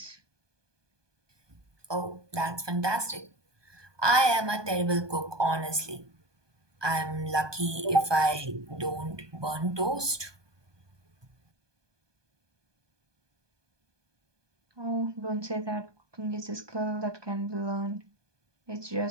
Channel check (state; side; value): late; left; 1.2 ms